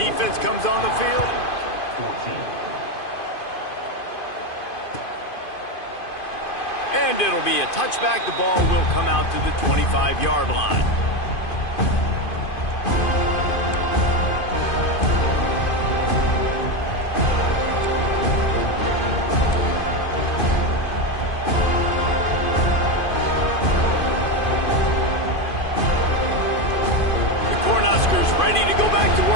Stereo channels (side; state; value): right; late; 2.5 ms